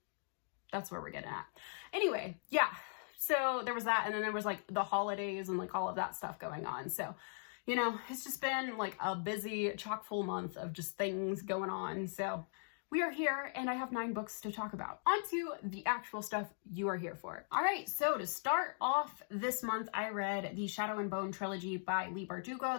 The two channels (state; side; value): silent; right; digital silence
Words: That's where we're getting at. Anyway, yeah. So there was that, and then there was the holidays and all of that stuff going on. So, it's just been a busy, chock full month of just things going on. So we are here and I have 9 books to talk about. On to the actual stuff you are here for. All right, so to start off this month, I read the Shadow and Bone trilogy by Leigh